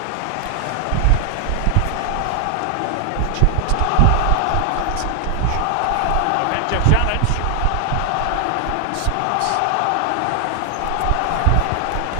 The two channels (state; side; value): different; both; correlation 0.00